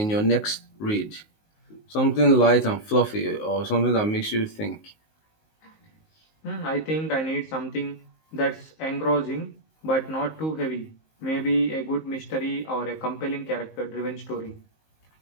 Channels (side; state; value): right; late; 19 ms